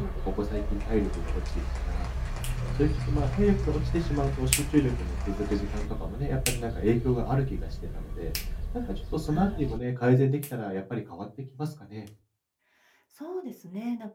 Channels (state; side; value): identical; both; correlation 1.00